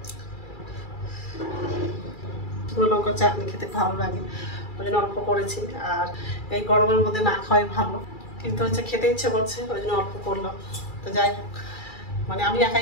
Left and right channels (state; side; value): late; right; 2.3 ms